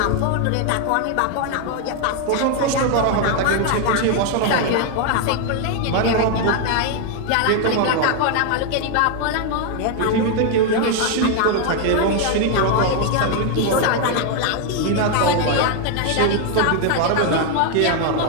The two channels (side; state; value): both; different; correlation 0.00